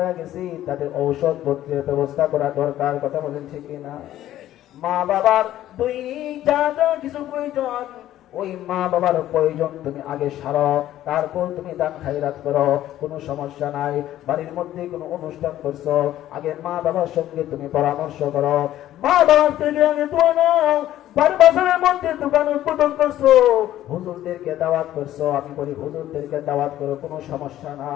গেছে, তাদের ঔষধ পত্রের ব্যবস্থা করা দরকার। কথা বলেন ঠিক কিনা? মা বাবার দৈনিক যা যা কিছু প্রয়োজন, ওই মা বাবার প্রয়োজন তুমি আগে সারো, তারপর তুমি দান খায়রাত করো, কোনো সমস্যা নাই। বাড়ির মধ্যে কোনো অনুষ্ঠান করছো, আগে মা বাবার সঙ্গে তুমি পরামর্শ করো, মা বাবার থেকে আগে দোয়া নাও। বাজারের মধ্যে দোকান উদ্বোধন করছো, হুজুরদেরকে দাওয়াত করছো, আমি বলি হুজুরদেরকে দাওয়াত করো, কোনো সমস্যা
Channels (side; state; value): right; quieter; 13.2 dB